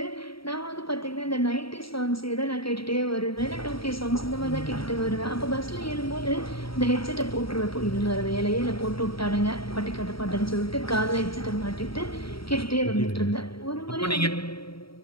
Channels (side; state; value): right; late; 0.75 ms